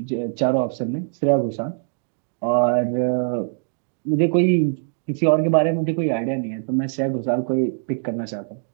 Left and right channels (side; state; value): left; silent; digital silence